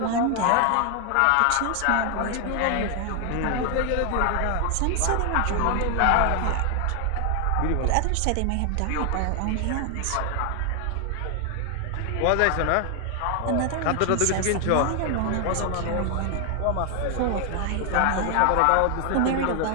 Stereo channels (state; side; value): different; both; correlation 0.00